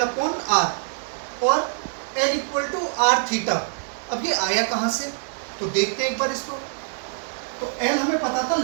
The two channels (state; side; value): silent; left; digital silence